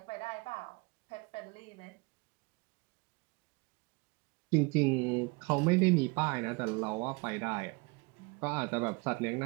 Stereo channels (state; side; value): quieter; left; 28.0 dB